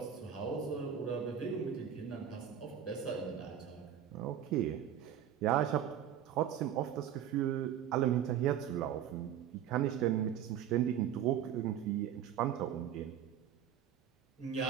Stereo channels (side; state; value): left; quieter; 9.7 dB